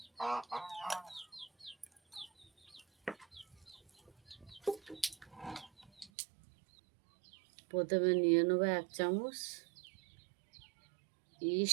প্রথমে নিয়ে নেব 1 চামচ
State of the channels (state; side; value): drops out; left; at 6.1 s